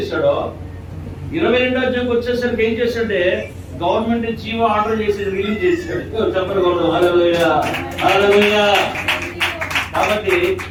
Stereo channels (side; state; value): both; identical; correlation 1.00